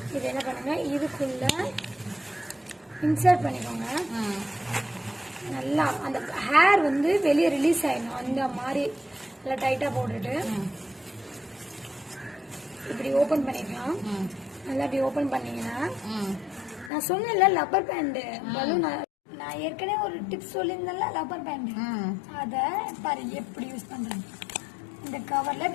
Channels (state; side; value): drops out; right; at 16.9 s